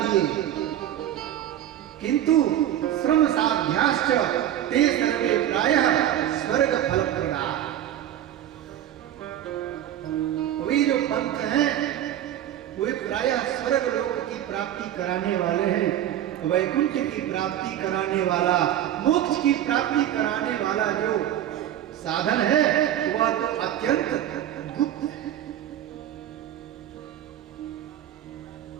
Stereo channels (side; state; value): left; quieter; 11.6 dB